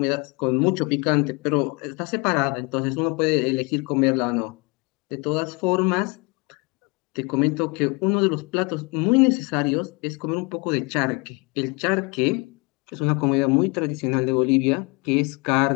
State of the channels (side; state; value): right; quieter; 28.9 dB